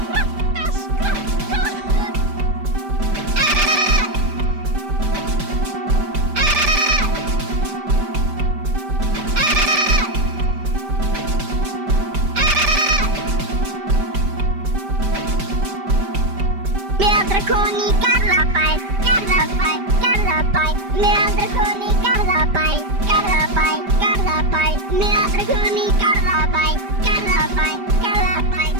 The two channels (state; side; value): late; left; 5.1 ms